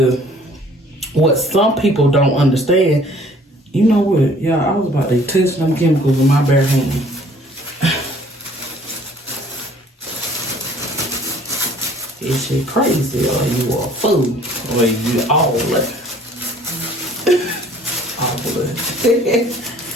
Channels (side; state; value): both; normal; correlation 0.55